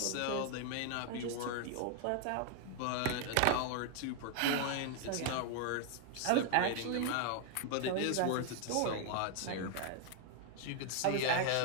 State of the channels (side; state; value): both; different; correlation 0.00